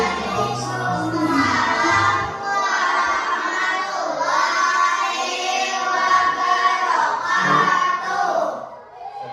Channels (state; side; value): identical; both; correlation 1.00